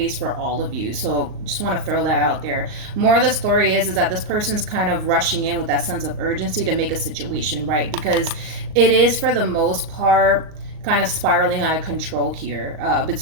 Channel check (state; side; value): late; left; 38 ms